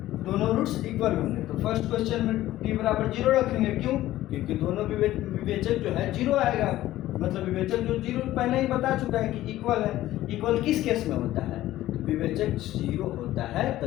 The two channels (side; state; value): right; quieter; 14.9 dB